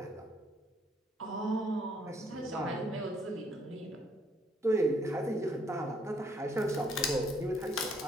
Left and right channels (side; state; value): both; normal; correlation 0.67